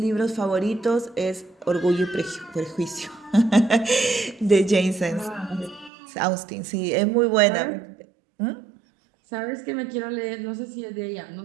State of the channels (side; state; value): left; drops out; at 5.9 s